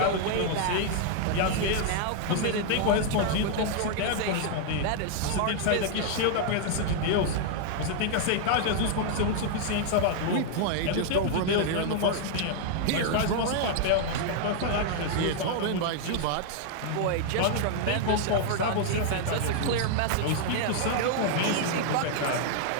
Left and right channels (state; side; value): different; both; correlation -0.01